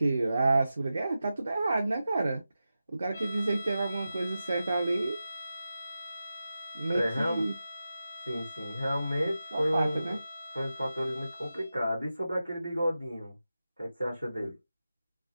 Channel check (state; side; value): inverted; both; correlation -0.93